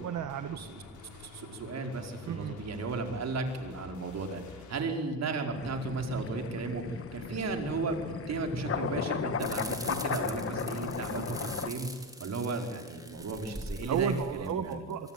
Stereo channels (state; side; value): normal; both; correlation 0.16